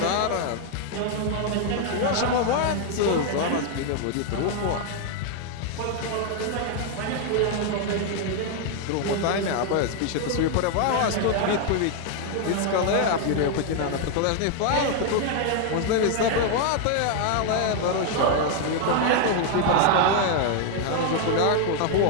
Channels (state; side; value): different; both; correlation 0.00